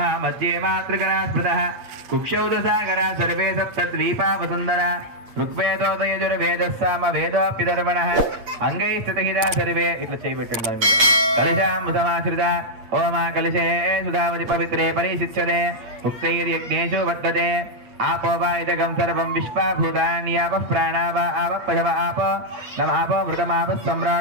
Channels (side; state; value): left; late; 8.5 ms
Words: మధ్యే మాతృగణా స్మృతః కుక్షౌ దశాగరా సర్వే సప్తద్వీపా వసుందర ఋగ్వేదోదయజుర్వేదస్సామ వేదోప్యధర్మణః అంగై స్థితహితా సర్వే. ఇట్లా చేయబెట్టండి. కలశామృతమాశ్రిత ఓమా కలశే సుధావతి పవిత్రే పరిశిచ్యతే ఉక్తైర్యజ్ఞేషు వర్తతే आपो वा इदगं सर्वं विश्वाभूतान्यापः प्राणा वा आपः पशव आपो नम आपो मृतमापः